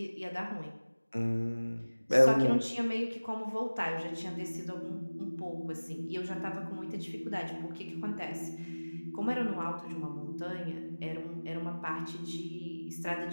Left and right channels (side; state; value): both; inverted; correlation -1.00